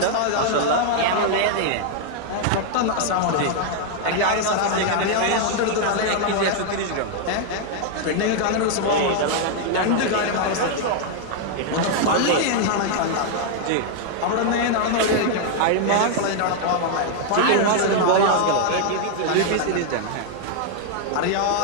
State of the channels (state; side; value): different; both; correlation 0.00